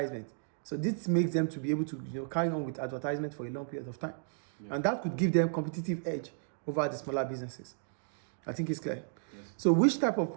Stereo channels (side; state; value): left; silent; digital silence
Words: So this makes them to be able to carry on with advertisement for a long period of time. Yeah. And that could give them competitive edge over the smaller businesses. I think it's clear. Yes. So which type of